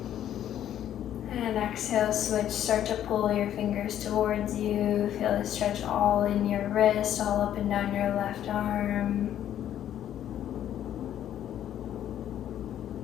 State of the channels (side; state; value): right; quieter; 11.0 dB